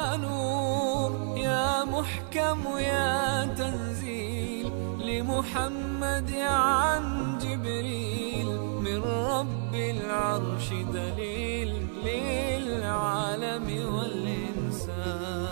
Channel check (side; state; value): left; silent; 58 dB below the other